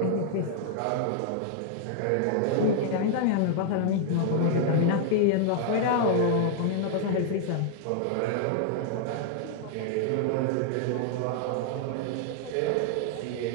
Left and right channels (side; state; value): both; different; correlation -0.01